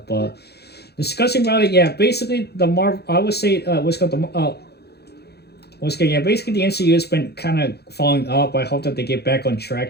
But discussing about it, yeah, basically the Marvel, I would say, what's called the once again, yeah, basically the MCU has been kind of falling off. I hope that they get back on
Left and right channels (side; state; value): right; late; 0.47 ms